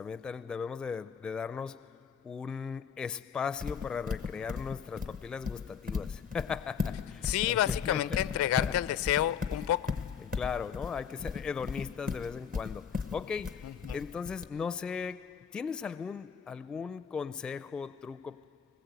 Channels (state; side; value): quieter; right; 7.5 dB